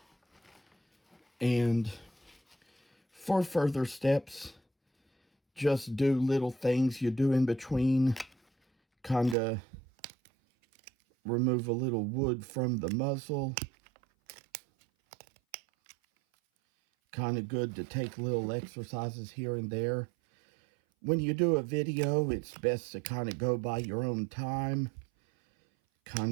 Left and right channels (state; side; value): drops out; left; at 9.3 s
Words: And for further steps, just do little things you do in between. Kind of remove a little wood from the muzzle. Kind of good to take little exercises here and there. When you do a video, it's best to kind of go by your own time.